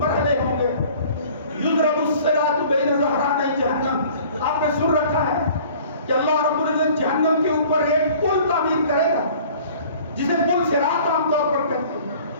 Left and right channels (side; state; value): both; inverted; correlation -0.49